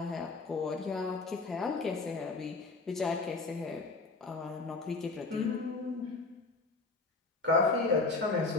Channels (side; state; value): right; quieter; 3.7 dB